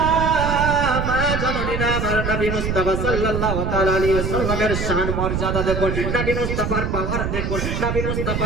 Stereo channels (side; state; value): right; noise; rumble, 2 dB below the sound